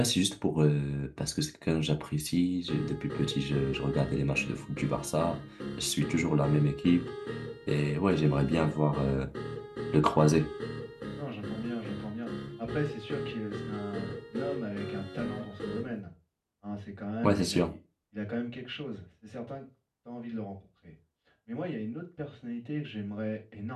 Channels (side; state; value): both; identical; correlation 1.00